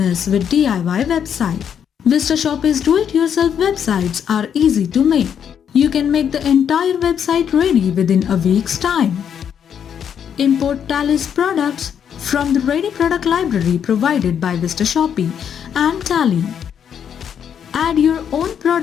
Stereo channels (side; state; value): right; quieter; 8.3 dB